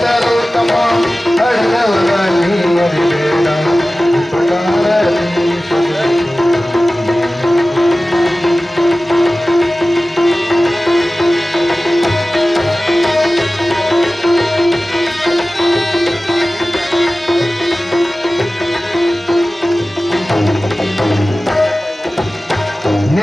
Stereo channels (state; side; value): normal; both; correlation 0.96